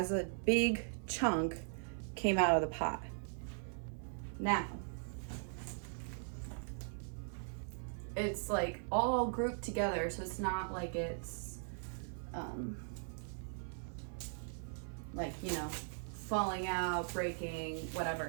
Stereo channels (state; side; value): silent; left; 51 dB below the other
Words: a big chunk came out of the pot. Now, it's like all grouped together, so it's not like it's like, you know, falling out, breaking,